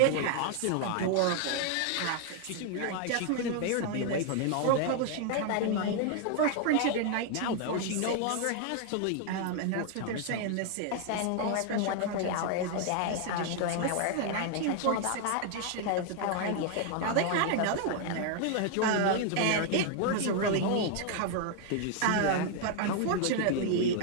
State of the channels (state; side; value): different; both; correlation 0.00